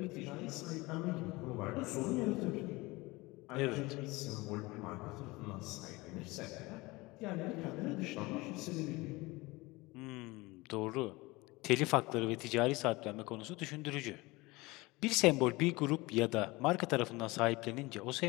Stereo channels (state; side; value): quieter; right; 22.4 dB